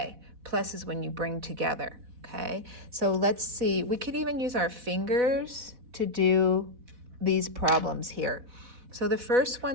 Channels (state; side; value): late; left; 4.1 ms